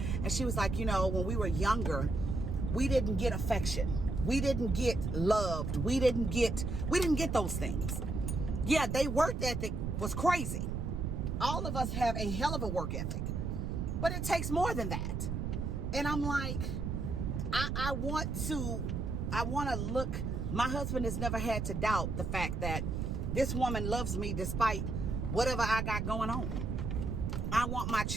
and she was like, you know, when we were younger, we didn't get affection. We didn't get loved. We didn't get those things. Yeah, they work ethic was crazy. All of us have a hell of a work ethic. But it takes more than that. And I'm like, I want to look, my husband has never had to doubt the fact that this woman loves me despite whatever I got going on. I want my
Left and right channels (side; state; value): right; noise; rumble, 2 dB below the sound